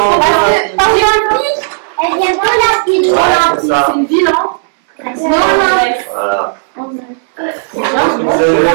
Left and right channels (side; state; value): left; silent; 73 dB below the other